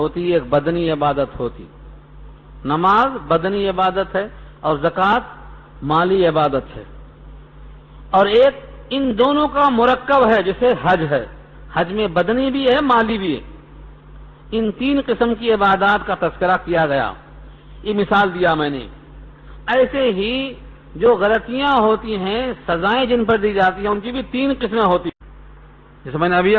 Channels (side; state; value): both; identical; correlation 1.00